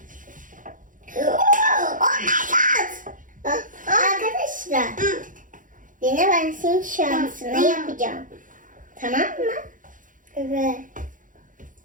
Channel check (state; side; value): late; left; 0.38 ms